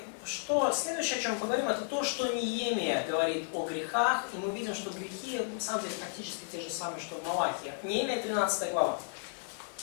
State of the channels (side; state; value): right; silent; digital silence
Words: что следующее, о чем мы поговорим, это то, что Неемия говорит о грехах, и мы видим, что грехи, на самом деле, практически те же самые, что в Малахии. Неемия 13 глава.